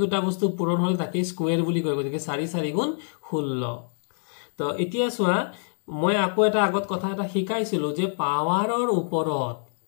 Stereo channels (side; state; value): right; silent; digital silence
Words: দুটা বস্তু পূৰণ হল তাকে স্কয়াৰ বুলি কয় গতিকে 4 4 গুণ 16 তো এতিয়া সোৱা মই আকৌ এটা আগত কথা এটা শিকাইছিলো যে পাৱাৰৰ ওপৰত